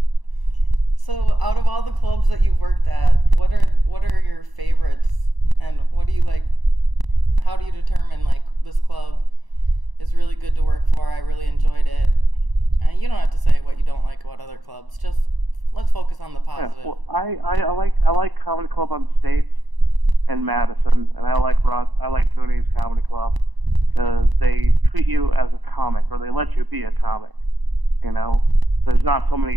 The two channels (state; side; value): late; left; 1.0 ms